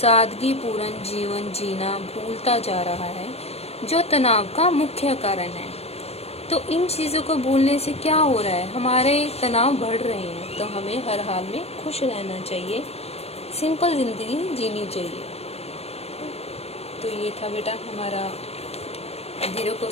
जीवन जीना भूलता जा रहा है, जो तनाव का मुख्य कारण है। तो इन चीज़ों को भूलने से क्या हो रहा है, हमारे तनाव बढ़ रहे हैं। तो हमें हर हाल में खुश रहना चाहिए, सिंपल जिंदगी जीनी चाहिए। तो ये था बेटा हमारा 0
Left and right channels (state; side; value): late; right; 0.30 ms